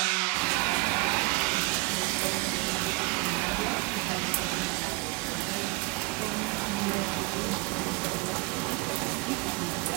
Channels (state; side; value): quieter; left; 25.2 dB